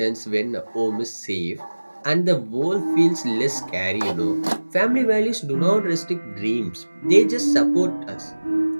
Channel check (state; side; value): inverted; both; correlation -1.00